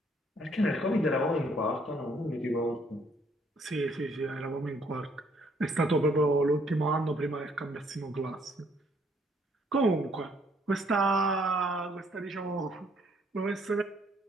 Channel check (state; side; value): normal; both; correlation 0.66